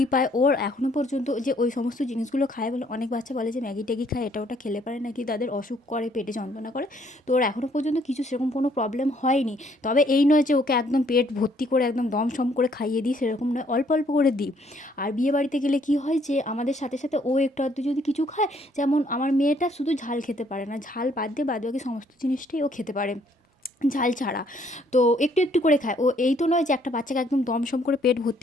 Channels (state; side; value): normal; both; correlation 0.65